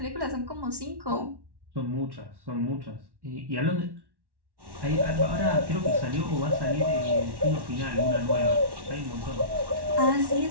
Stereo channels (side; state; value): left; late; 1.1 ms